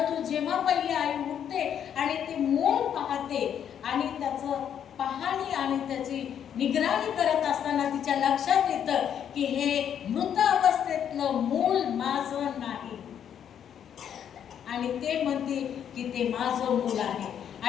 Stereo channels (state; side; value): quieter; right; 9.0 dB